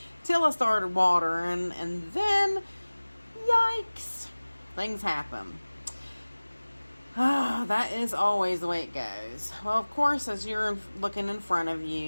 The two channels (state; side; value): inverted; both; correlation -1.00